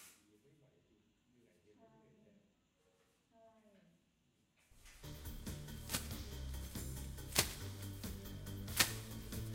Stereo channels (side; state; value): both; identical; correlation 1.00